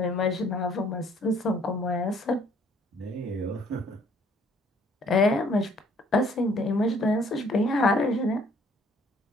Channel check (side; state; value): both; normal; correlation 0.61